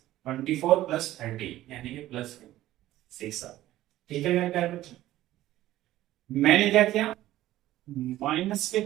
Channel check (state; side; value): quieter; left; 14.7 dB